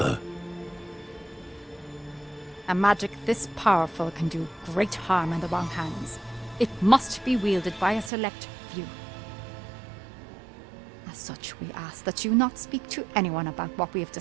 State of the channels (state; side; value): drops out; left; at 8.1 s